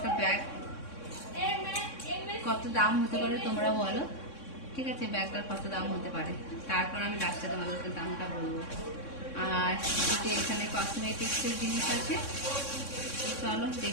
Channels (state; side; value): late; right; 3.6 ms